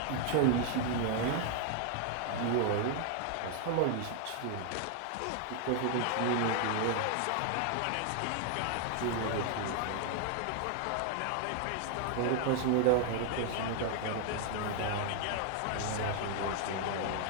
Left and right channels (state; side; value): different; both; correlation 0.00